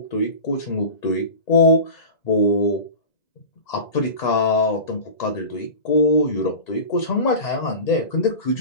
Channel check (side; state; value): right; late; 1.9 ms